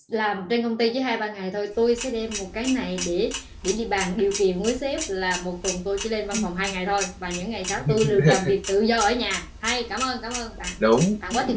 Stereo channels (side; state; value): both; identical; correlation 1.00